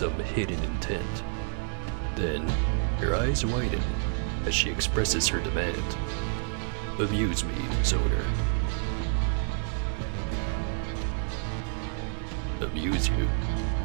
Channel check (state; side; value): silent; left; 59 dB below the other